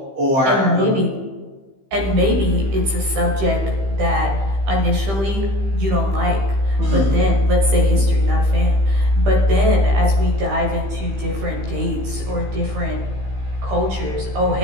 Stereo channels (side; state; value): left; late; 15 ms